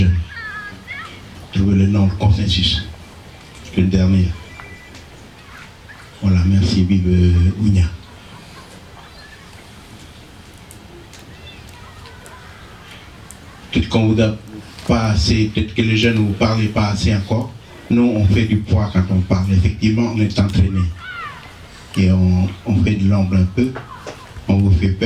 Trouver le nom, le consensus. Le dernier. Voilà, merci, vive Ounia. peut-être qu'on vous a pas assez, peut-être que les jeunes ne vous parlez pas assez encore. Nous, on fait du poids quand on parle. Effectivement, on est entraîné. Et on fait de l'ombre un peu. On vous fait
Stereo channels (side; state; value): both; identical; correlation 1.00